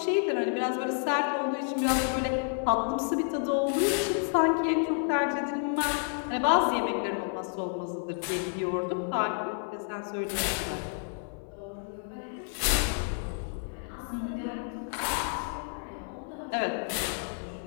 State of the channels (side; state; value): right; silent; 58 dB below the other